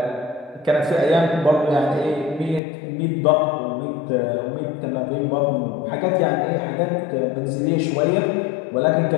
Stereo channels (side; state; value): right; drops out; at 2.6 s